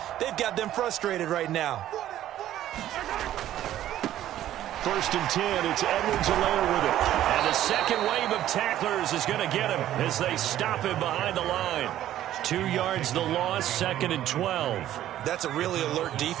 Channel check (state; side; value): quieter; left; 12.6 dB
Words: They've got them frustrated right now. 1st and 10, it's Edwards-Helaire with it. And the second wave of tacklers is going to get him as they stop him behind the line. 2 yards the loss, 2nd and 12. That's a really alert